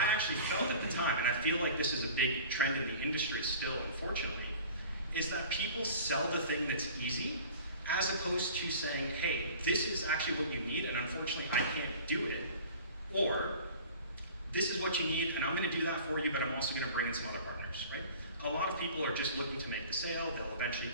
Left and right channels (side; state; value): both; inverted; correlation -0.43